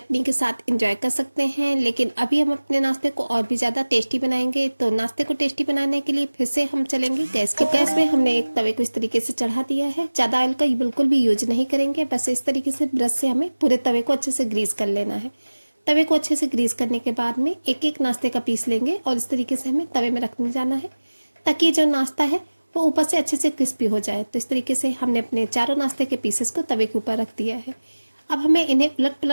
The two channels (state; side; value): inverted; both; correlation -1.00